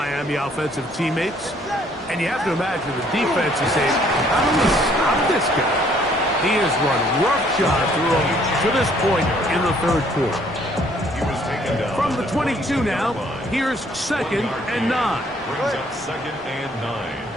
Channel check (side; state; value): both; normal; correlation 0.63